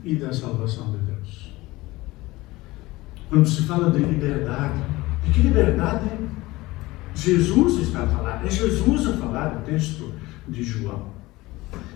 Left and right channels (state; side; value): quieter; right; 19.9 dB